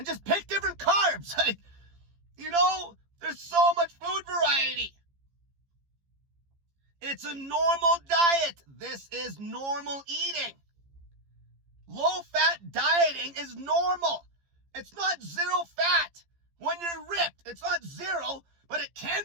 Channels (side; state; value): left; late; 15 ms